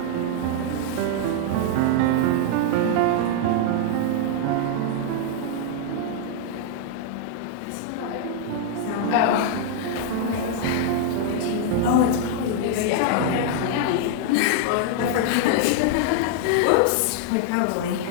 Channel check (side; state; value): both; different; correlation 0.00